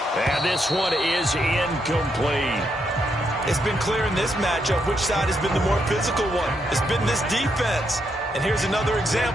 And this one is incomplete. It's been clear in this matchup which side has been the more physical one. It's been this defense. And here's another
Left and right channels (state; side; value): normal; both; correlation 0.79